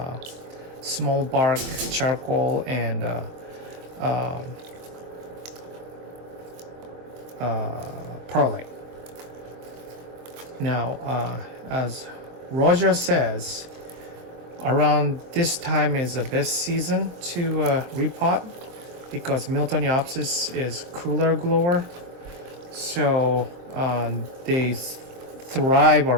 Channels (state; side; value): late; left; 23 ms